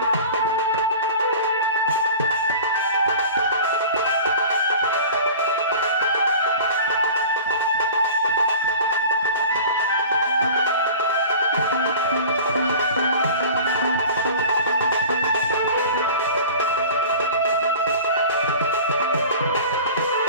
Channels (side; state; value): both; inverted; correlation -0.40